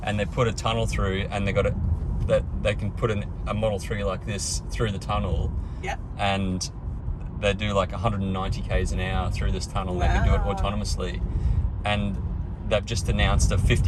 And they put a tunnel through, and they got it that they can put a Model 3 like this through the tunnel. Yeah. And they do like 190 k's an hour through this tunnel. Wow. They can do it autonomously, and they've just announced a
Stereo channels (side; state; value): both; identical; correlation 1.00